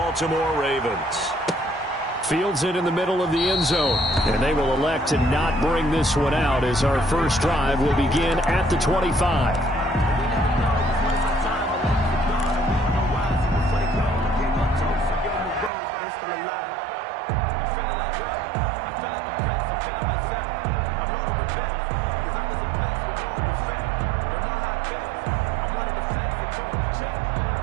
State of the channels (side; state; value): left; drops out; at 15.7 s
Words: Ravens. Fields it in the middle of the end zone, and they will elect to not bring this one out as our first drive will begin at the 25.